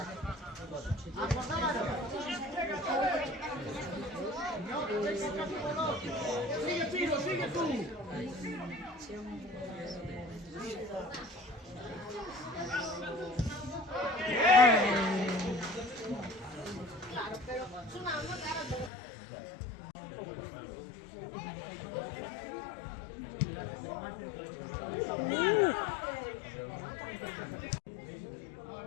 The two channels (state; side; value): drops out; right; at 18.9 s